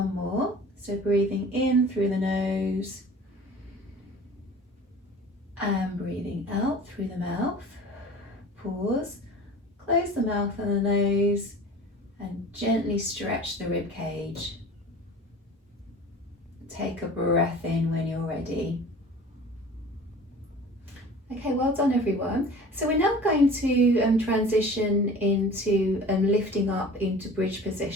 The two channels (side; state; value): both; normal; correlation 0.42